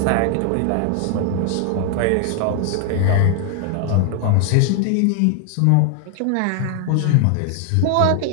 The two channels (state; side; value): different; both; correlation 0.00